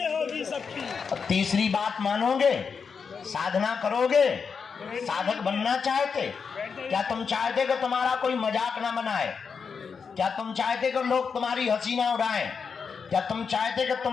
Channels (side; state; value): right; quieter; 5.8 dB